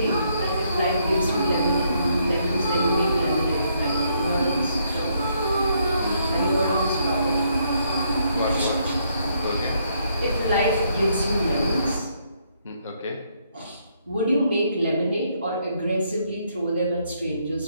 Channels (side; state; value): both; inverted; correlation -0.73